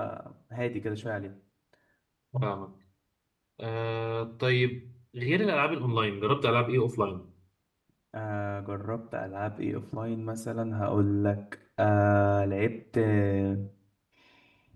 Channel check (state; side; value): identical; both; correlation 1.00